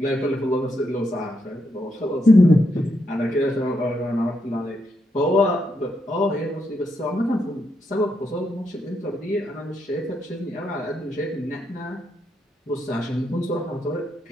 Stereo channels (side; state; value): both; normal; correlation 0.80